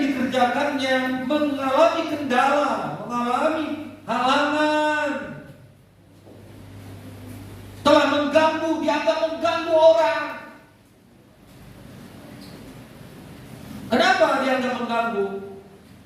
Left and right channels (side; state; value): both; identical; correlation 1.00